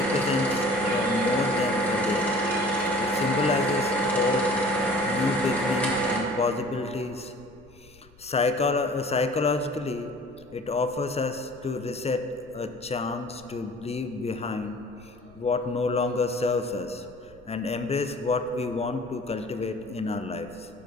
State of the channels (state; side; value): noise; left; rumble, 26 dB below the sound